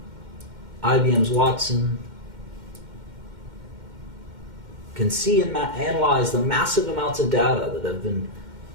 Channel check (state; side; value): late; left; 2.1 ms